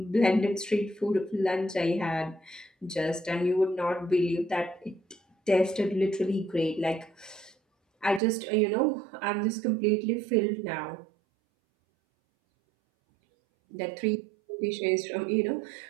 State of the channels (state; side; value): drops out; left; at 8.2 s